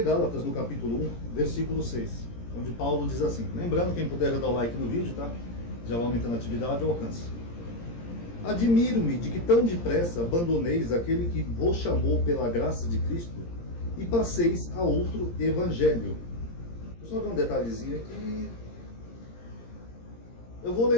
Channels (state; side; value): late; right; 17 ms